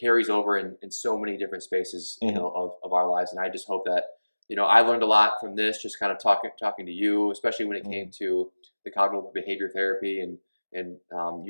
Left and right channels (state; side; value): inverted; both; correlation -1.00